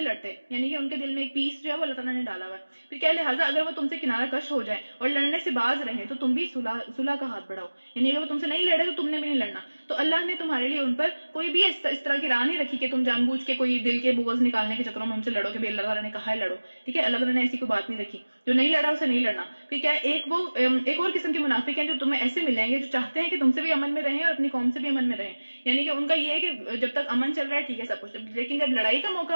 یعنی کہ ان کے دل میں ایک پیس جو ہے وہ اللہ تعالیٰ نے ڈالا ہوا ہے. پھر کیا لہٰذا اگر وہ تم سے کنارہ کش ہو جائیں اور لڑنے سے باز رہیں تو تم بھی صلح کا ہاتھ بڑھاؤ, یعنی اگر وہ تم سے نہیں لڑے تو تم نے بھی نہیں لڑنا. تو اللہ نے تمہارے لیے ان پر کوئی بھی اس طرح کی راہ نہیں رکھی کہ تم جان بوجھ کے کوئی دل کے بغض نکالنے کے چکروں میں ہم سے لڑو کہ بھئی اللہ تعالیٰ نے کہا ہے لڑو, ٹھیک ہے. اللہ تعالیٰ نے ایسی کوئی بات نہیں رکھی, جو نہیں لڑا اسے نہیں لڑنا. پھر کیا ایک اور قسم کے منافق ہیں جو تمہیں ایسے ملیں گے جو چاہتے ہیں کہ تم سے بھی امن میں رہیں اور اپنی قوم سے بھی امن میں رہیں, یعنی کہ ان کا یہ ہے کہ جب تک امن چل رہا ہے ٹھیک ہے سب کچھ, لیکن جب لڑائی کا موقع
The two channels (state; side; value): inverted; both; correlation -1.00